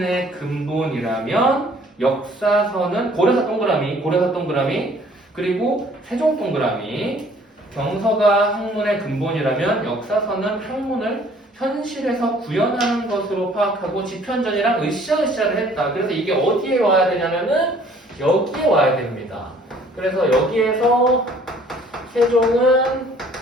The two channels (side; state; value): both; normal; correlation 0.57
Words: 근본이라면 역사서는 고려사 동그라미 그리고 세종 동그라미. 경서가 학문의 근본이라면 역사서는 학문을 현실에서 구현하는 것으로 파악하고 지편전이랑 으쌰으쌰를 했다. 그래서 이게 어디에 와야 되냐면은 여기에 와야 됩니다. 그래서 여기에서 세종은